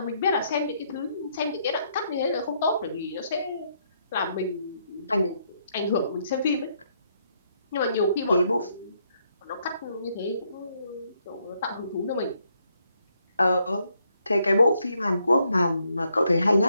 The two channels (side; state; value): both; inverted; correlation -0.74